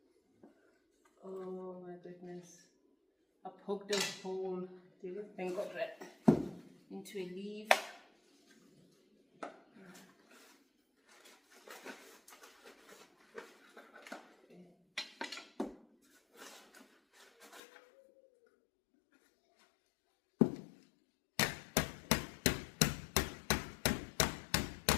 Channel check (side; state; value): right; drops out; at 17.6 s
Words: Oh my goodness. I poked a hole, thank God, right into a leaf.